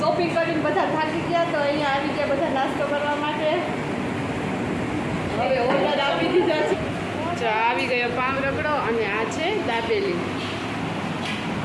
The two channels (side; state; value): both; identical; correlation 1.00